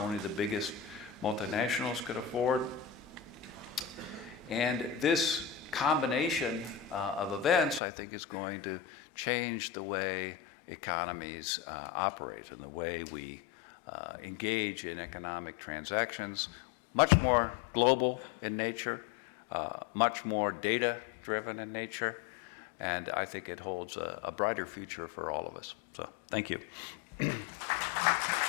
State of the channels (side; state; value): right; drops out; at 7.8 s